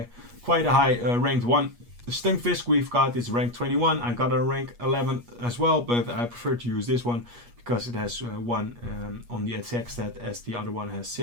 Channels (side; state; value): left; late; 8.4 ms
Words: ranked 1. The Stunfisk we've got is rank 21. I got a rank 11 as well, but I prefer to use this one because it has 1 on the attack stat, as the other one has